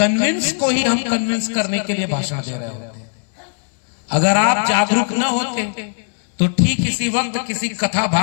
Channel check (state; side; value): silent; right; digital silence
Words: को ही हम कन्विंस करने के लिए भाषण दे रहे होते हैं। अगर आप जागरूक न होते तो ठीक इसी वक्त किसी कथा